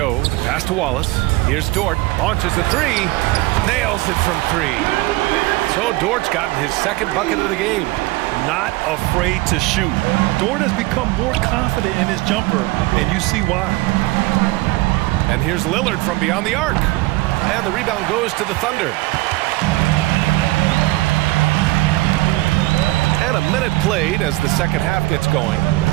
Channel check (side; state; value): left; quieter; 20.4 dB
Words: the pass to Wallace. Here's Dort, launches a 3, nails it from 3. So Dort's gotten his second bucket of the game. Not afraid to shoot. Dort has become more confident in his jumper, and you see why. And here's Lillard from beyond the arc. And the rebound goes to the Thunder. And a minute played as the second half gets going.